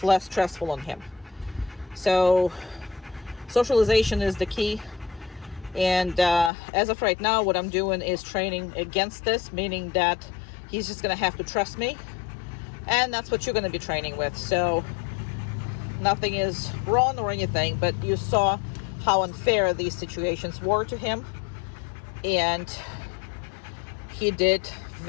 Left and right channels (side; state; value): right; drops out; at 6.5 s